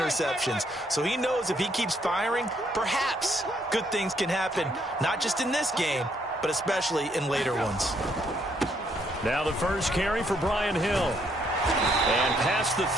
So he knows if he keeps firing, perhaps good things can happen, not just in this game, but especially in later ones. Now the first carry for Brian Hill. And past the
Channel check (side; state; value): both; normal; correlation 0.71